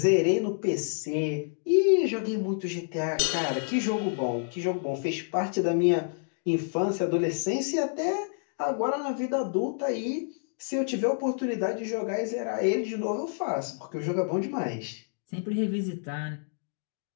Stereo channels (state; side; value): silent; right; digital silence